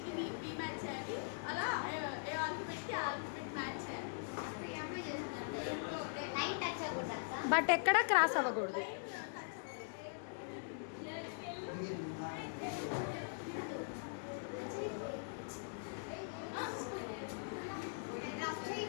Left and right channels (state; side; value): silent; right; digital silence